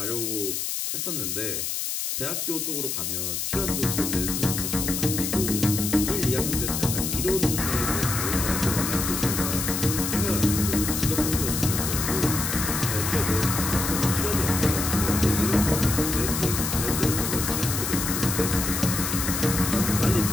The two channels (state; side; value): noise; left; hiss, 2 dB below the sound